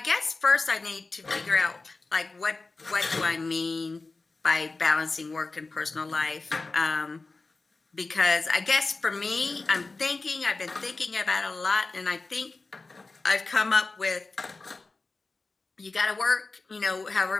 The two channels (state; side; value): quieter; right; 3.7 dB